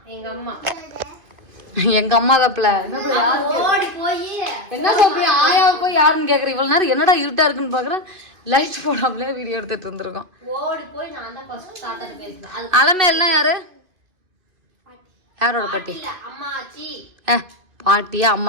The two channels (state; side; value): late; left; 2.5 ms